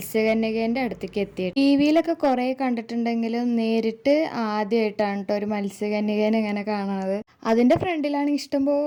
അടുത്തേക്ക് എത്തി. ടി വിയിലൊക്കെ കുറേ കണ്ടിട്ടുണ്ടെങ്കിലും നേരിട്ട് ആദ്യമായിട്ടാണ് കേട്ടോ ഒരു മത്സ്യകന്യകേനെ ഇങ്ങനെ കാണുന്നത്. അതിൻ്റെ ഫ്രണ്ടിലാണെങ്കിൽ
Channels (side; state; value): both; identical; correlation 1.00